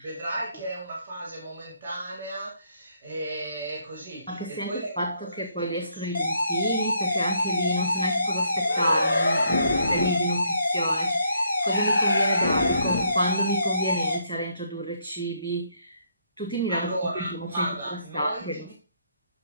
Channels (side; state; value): both; inverted; correlation -0.71